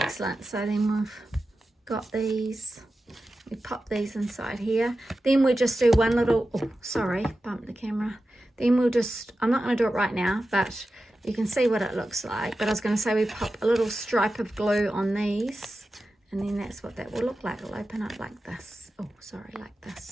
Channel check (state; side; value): normal; both; correlation 0.93